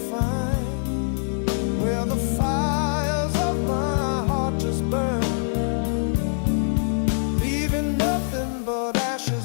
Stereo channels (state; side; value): silent; right; 63 dB below the other